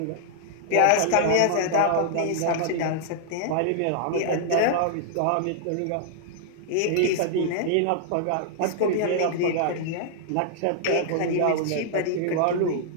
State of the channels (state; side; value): different; both; correlation -0.01